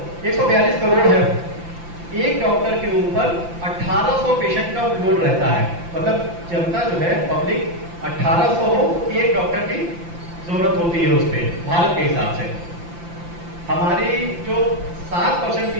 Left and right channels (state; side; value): late; left; 5.9 ms